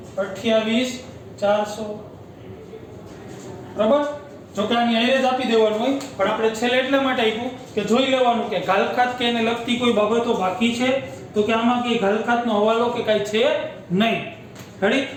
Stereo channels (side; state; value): both; identical; correlation 1.00